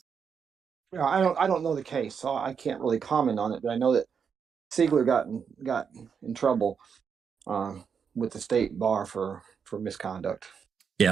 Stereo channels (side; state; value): left; quieter; 6.6 dB